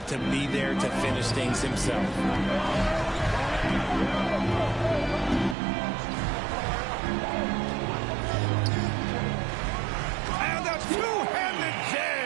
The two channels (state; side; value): drops out; left; at 5.6 s